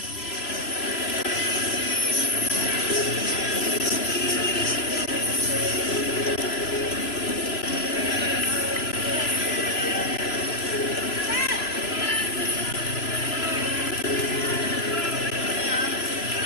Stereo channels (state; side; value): late; right; 3.0 ms